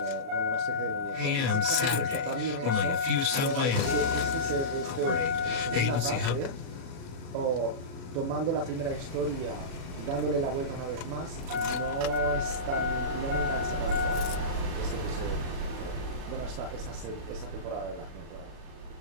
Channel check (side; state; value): left; late; 37 ms